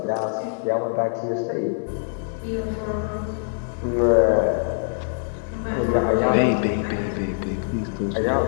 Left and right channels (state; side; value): silent; right; digital silence